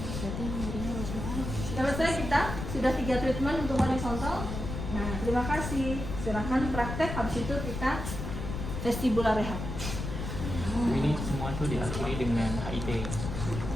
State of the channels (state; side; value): noise; left; rumble, 5 dB below the sound